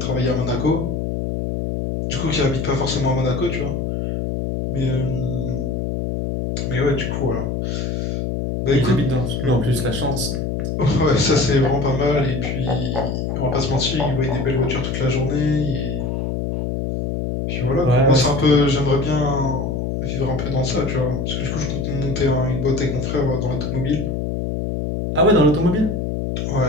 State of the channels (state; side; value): noise; left; hum, 2 dB below the sound